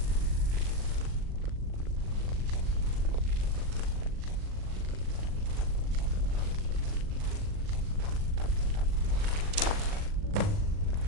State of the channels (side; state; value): left; late; 39 ms